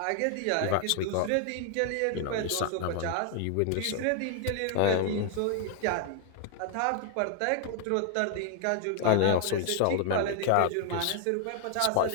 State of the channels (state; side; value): different; both; correlation 0.00